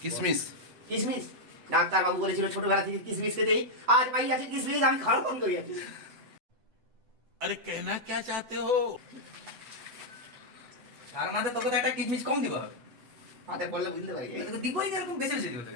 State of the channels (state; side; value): late; left; 8.0 ms